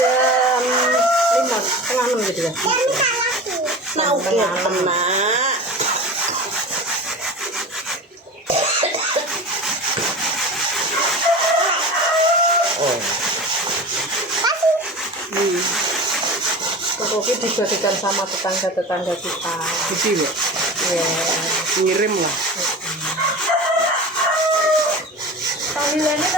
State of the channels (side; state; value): both; normal; correlation 0.32